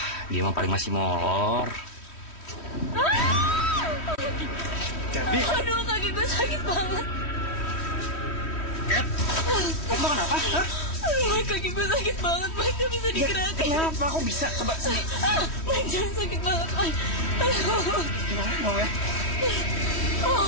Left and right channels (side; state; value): right; late; 3.1 ms